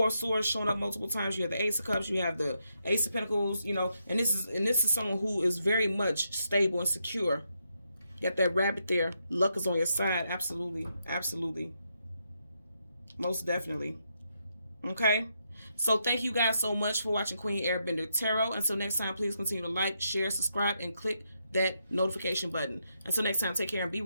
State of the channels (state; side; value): inverted; both; correlation -0.81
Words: of Swords showing up multiple times. You have the Ace of Cups. You have the Ace of Pentacles. And this is someone who is very much stable and secure. You got that rabbit there. Luck is on your side. Absolutely, absolutely, most definitely. Okay. So thank you guys so much for watching Queen Airbender Tarot. Until next time, please continue to like, share, subscribe, and click that notification button. Until next time, take care and be